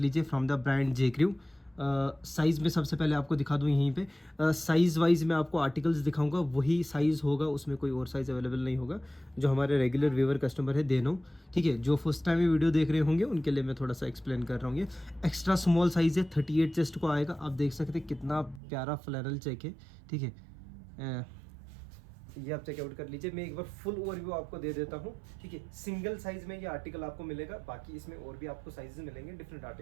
from the brand J crew. Size में सबसे पहले आपको दिखा दूँ यहीं पे। साइज़ वाइज मैं आपको आर्टिकल्स दिखाऊंगा, वही साइज़ होगा, उसमें कोई और साइज़ अवेलेबल नहीं होगा। जो हमारे रेगुलर व्यूअर कस्टमर है दे नो। ठीक है, जो फर्स्ट टाइम ये वीडियो देख रहे होंगे उनके लिए मैं थोड़ा सा एक्सप्लेन कर रहा हूँ। ये एक्स्ट्रा स्मॉल साइज़ है, 38 चेस्ट को आएगा। आप देख सकते हैं कितना प्यारा फ्लैनल चेक है। ठीक है, ये आप चेकआउट कर लीजिए। मैं एक बार फुल ओवरव्यू आपको दे देता हूँ। ठीक है, सिंगल साइज में ये आर्टिकल आपको मिलेगा, बाकी इसमें और भी आपको साइजेस मिलेंगे डिफरेंट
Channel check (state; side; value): drops out; left; at 18.6 s